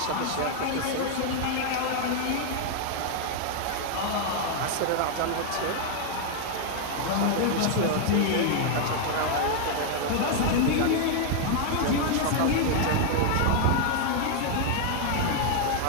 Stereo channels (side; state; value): both; different; correlation 0.00